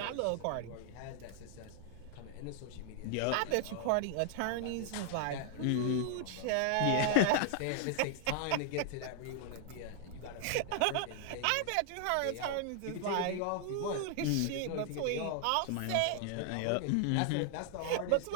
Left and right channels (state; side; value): different; both; correlation 0.00